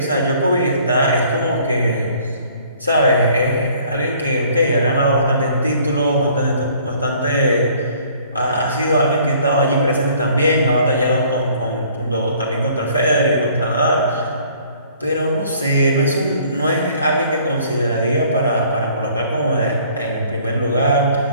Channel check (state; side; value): inverted; both; correlation -0.57